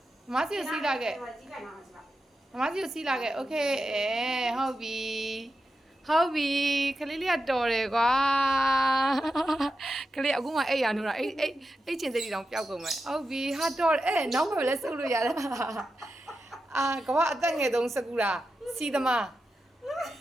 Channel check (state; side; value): normal; both; correlation 0.90